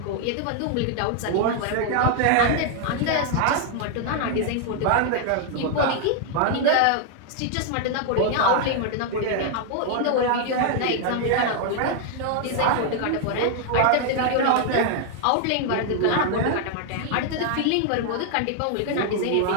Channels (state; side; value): different; both; correlation 0.00